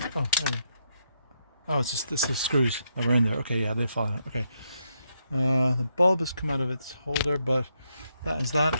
Oh, there. Oh, it's just this is screws that were in there. Okay, yeah, they fall out. Okay. The bulb has come out of its holder, but that is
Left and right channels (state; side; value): inverted; both; correlation -0.79